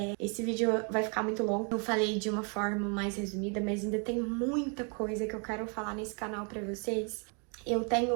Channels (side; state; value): left; quieter; 37.2 dB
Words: Esse vídeo vai ficar muito longo. Eu falei de uma forma mais resumida, mas ainda tem muita coisa que eu quero falar nesse canal pra vocês. Eu